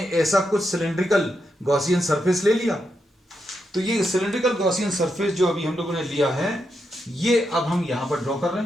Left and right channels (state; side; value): normal; both; correlation 0.83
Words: ऐसा कुछ सिलिंड्रिकल गॉसियन सरफेस ले लिया। तो ये सिलिंड्रिकल गॉसियन सरफेस जो अभी हम लोगों ने लिया है, ये अब हम यहां पर ड्रॉ कर रहे